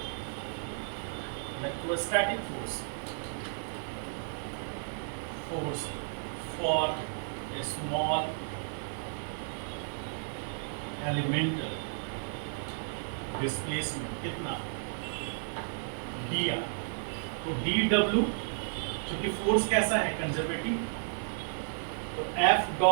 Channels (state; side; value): silent; left; digital silence